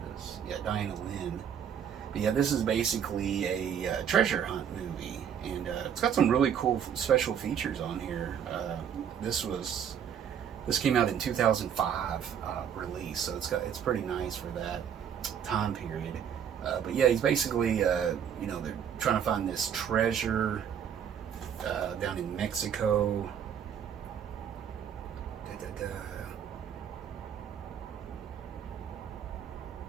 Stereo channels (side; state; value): left; quieter; 8.4 dB